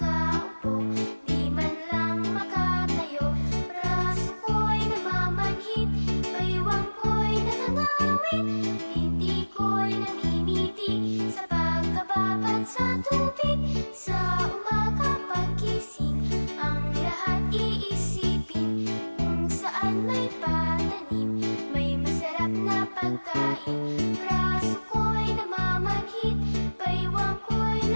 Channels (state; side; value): inverted; both; correlation -1.00